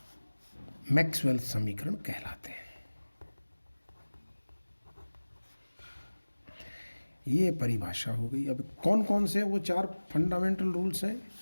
मैक्सवेल समीकरण कहलाते हैं। ये परिभाषा हो गई। अब कौन कौन से वो चार फंडामेंटल रूल्स हैं?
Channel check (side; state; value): both; inverted; correlation -1.00